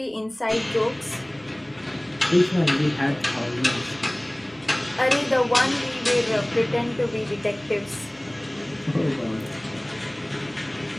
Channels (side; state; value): right; noise; hum, 29 dB below the sound